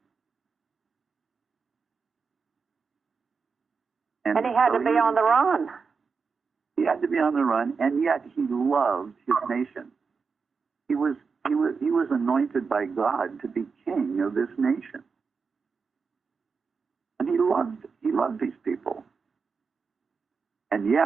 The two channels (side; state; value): left; quieter; 5.2 dB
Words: And he had to be on the run. He had to be on the run, and yet he loved his nation. He was anointed by God to be king of this nation. And he loved these people. And